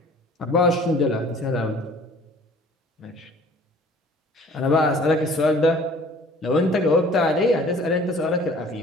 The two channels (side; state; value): both; normal; correlation 0.51